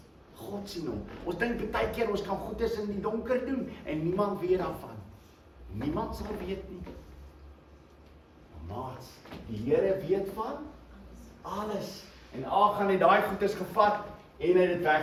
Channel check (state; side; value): identical; both; correlation 1.00